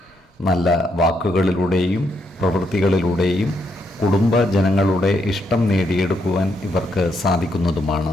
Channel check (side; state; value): both; normal; correlation 0.77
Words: നല്ല വാക്കുകളിലൂടെയും പ്രവൃത്തികളിലൂടെയും കുടുംബജനങ്ങളുടെ ഇഷ്ടം നേടിയെടുക്കുവാൻ ഇവർക്ക്